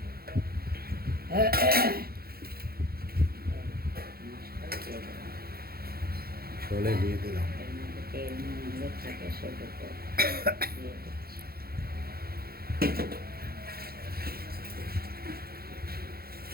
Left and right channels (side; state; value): left; late; 0.44 ms